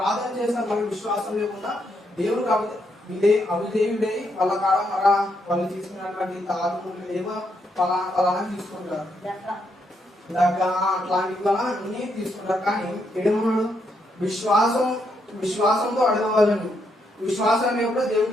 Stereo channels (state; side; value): normal; both; correlation 0.77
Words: చేస్తారు. మరి విశ్వాసం లేకుండా దేవుడు అవిధేయుడై వాళ్ళ కాడ వాళ్ళు తీసుకున్నటువంటి తాగులు ఏమో ఫలానా తీసుకుంటారు, అట్లాంటివి అన్ని తీసుకుంటారు. కానీ ఏమన్నాడు? విశ్వాసంతో అడగవాలని. విశ్వాసం లేకుండా